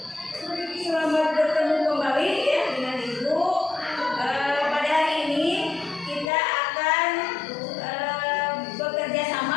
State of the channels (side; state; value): right; drops out; at 6.3 s